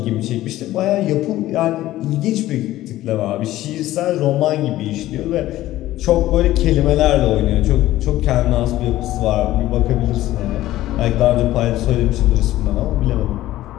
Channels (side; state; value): right; quieter; 15.1 dB